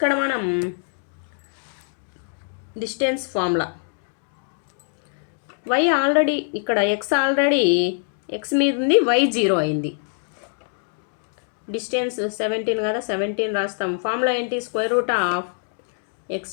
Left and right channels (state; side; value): silent; right; 59 dB below the other